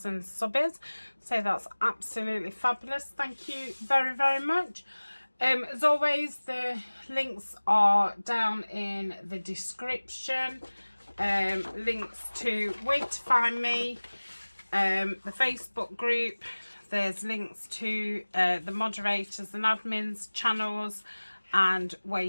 subs, so that's absolutely fabulous. Thank you very, very much. As always, the links are down in the description. Links to where to find me, the Facebook group. There's links to the moderators and admins channels and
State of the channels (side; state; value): both; inverted; correlation -1.00